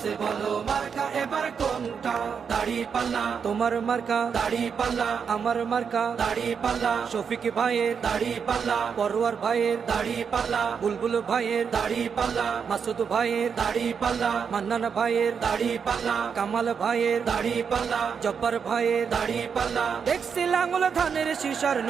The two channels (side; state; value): left; quieter; 6.5 dB